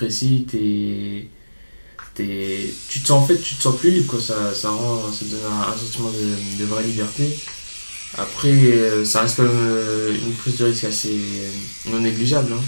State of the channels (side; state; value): both; inverted; correlation -1.00